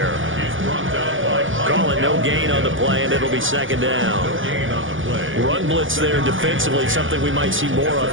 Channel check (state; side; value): late; left; 0.57 ms